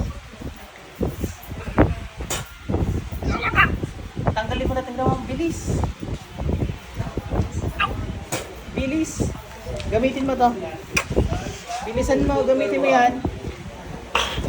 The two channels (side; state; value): both; identical; correlation 1.00